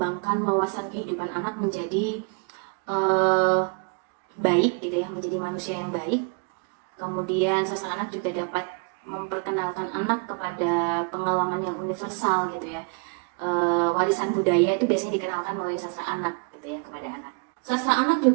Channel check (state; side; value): quieter; left; 36.7 dB